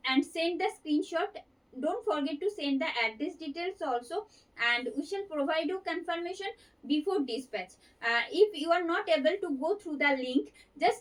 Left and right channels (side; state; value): both; identical; correlation 1.00